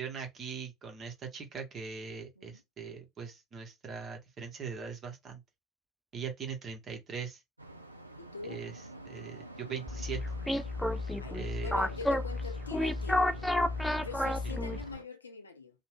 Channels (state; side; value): normal; both; correlation 0.74